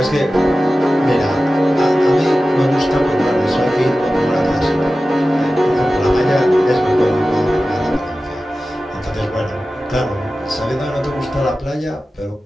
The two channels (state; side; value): normal; both; correlation 0.95